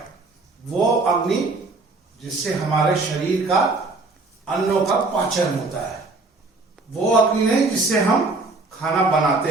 वो अग्नि जिससे हमारे शरीर का अन्नों का पाचन होता है। वो अग्नि नहीं जिससे हम खाना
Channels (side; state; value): left; quieter; 3.5 dB